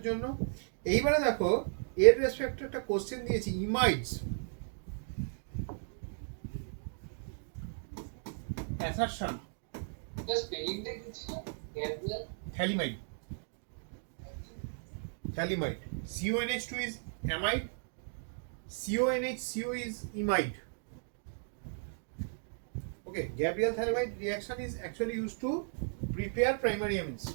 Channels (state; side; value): silent; left; digital silence